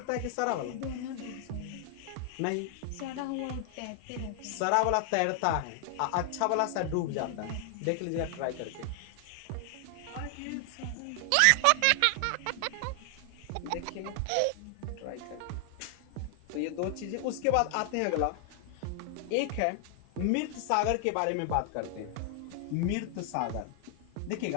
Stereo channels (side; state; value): both; different; correlation 0.00